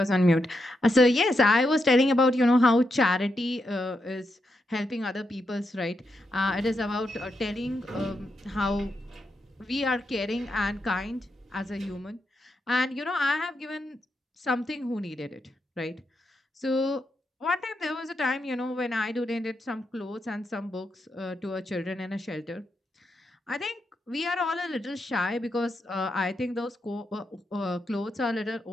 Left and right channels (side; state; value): both; normal; correlation 0.83